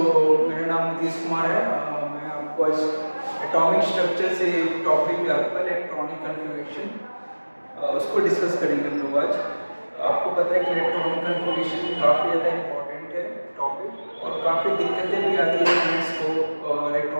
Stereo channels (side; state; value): both; inverted; correlation -1.00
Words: मेरा नाम नीतीश कुमार है। मैं आपको आज एटॉमिक स्ट्रक्चर से टॉपिक आपका इलेक्ट्रॉनिक कन्फिगरेशन उसको डिस्कस करेंगे हम लोग आज। आपको पता है कि इलेक्ट्रॉनिक कन्फिगरेशन काफ़ी ज़्यादा इम्पोर्टेंट है टॉपिक, और काफ़ी दिक्कतें भी आती है स्टूडेंट्स को